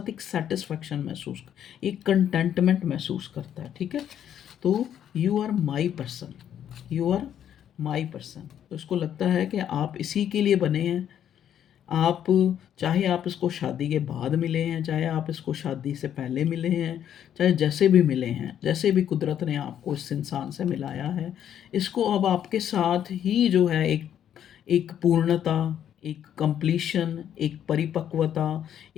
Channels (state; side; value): quieter; right; 9.9 dB